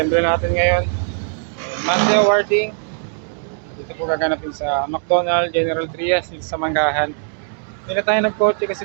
natin ngayon. Monday awarding. Dito po gaganapin sa McDonald General Trias dito sa Manggahan. Hindi na tayo nagkotse kasi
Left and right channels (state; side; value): silent; left; digital silence